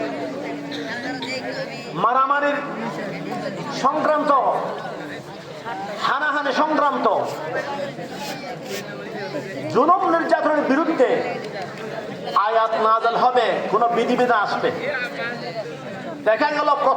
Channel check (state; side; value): identical; both; correlation 1.00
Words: মারামারির সংক্রান্ত, হানাহানি সংক্রান্ত, জুলুম নির্যাতনের বিরুদ্ধে আয়াত নাযিল হবে, কোন বিধিবিধান আসবে। দেখা গেল